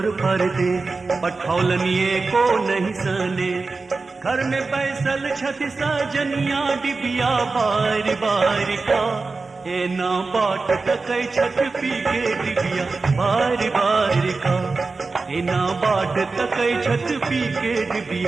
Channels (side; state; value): left; quieter; 4.0 dB